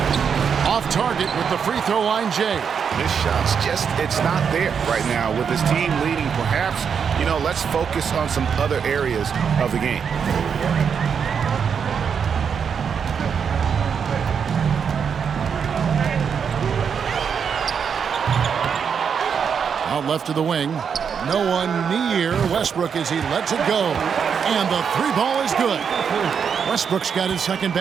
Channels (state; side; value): quieter; left; 6.9 dB